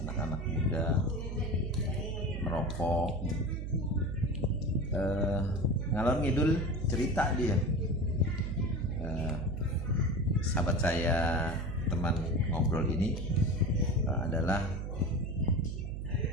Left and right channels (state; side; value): noise; right; hum, 5 dB below the sound